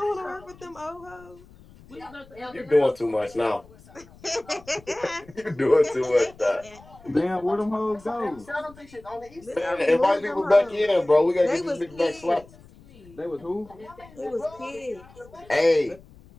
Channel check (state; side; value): noise; left; rumble, 23 dB below the sound